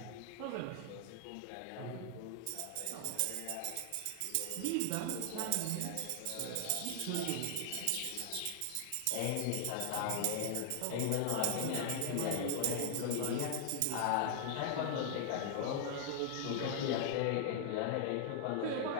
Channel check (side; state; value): both; different; correlation 0.00